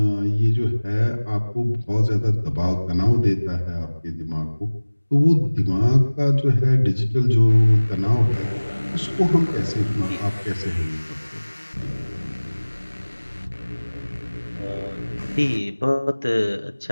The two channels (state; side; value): inverted; both; correlation -1.00